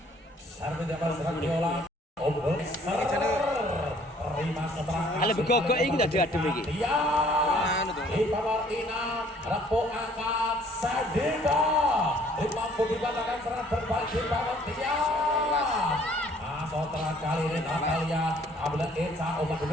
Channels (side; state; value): both; normal; correlation 0.59